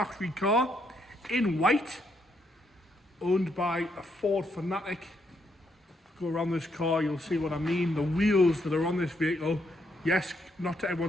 car in white, owned by a Ford fanatic. Go around this car, you'll see what I mean. The wheels that are on this vehicle, yes, not to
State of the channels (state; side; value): normal; both; correlation 0.76